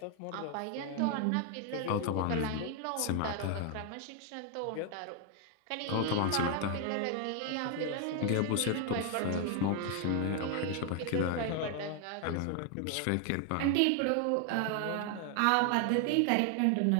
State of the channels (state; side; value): different; both; correlation 0.00